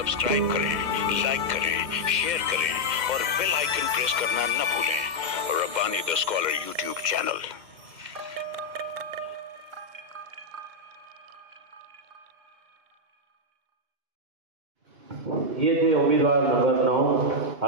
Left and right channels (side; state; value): left; late; 2.5 ms